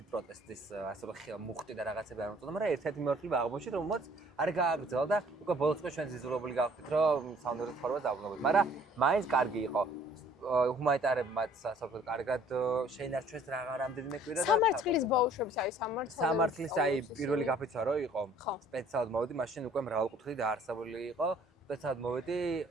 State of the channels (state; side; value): normal; both; correlation 0.57